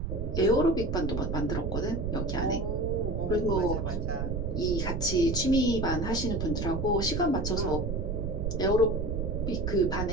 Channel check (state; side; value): noise; right; rumble, 2 dB below the sound